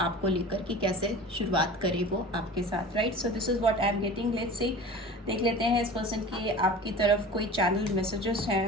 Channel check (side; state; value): both; normal; correlation 0.37